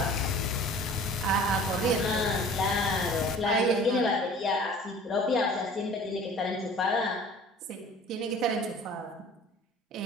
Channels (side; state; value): both; normal; correlation 0.46